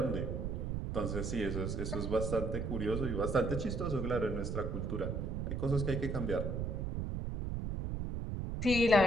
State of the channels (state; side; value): noise; right; rumble, 2 dB below the sound